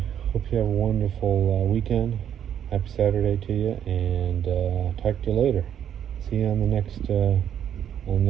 hope you have a wonderful weekend. Happy Saturday to you, and talk to you later. See you on the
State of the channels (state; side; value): quieter; left; 9.5 dB